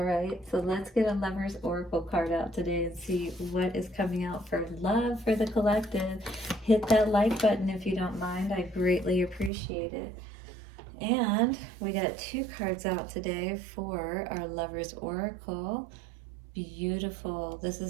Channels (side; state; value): left; drops out; at 9.5 s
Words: right, so let's get a Lover's Oracle card out today and see what is coming out for love for the collective. Hit that like button if you don't mind. I greatly appreciate it. And we got 2 cards out today for our Lover's Oracle. Beautiful. This